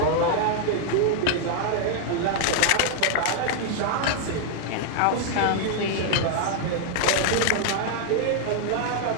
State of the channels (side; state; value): both; different; correlation -0.01